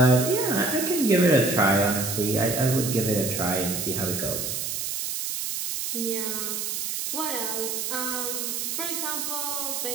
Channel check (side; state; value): right; noise; hiss, 3 dB below the sound